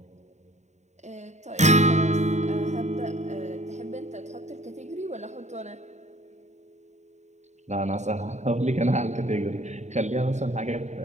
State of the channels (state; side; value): late; left; 0.34 ms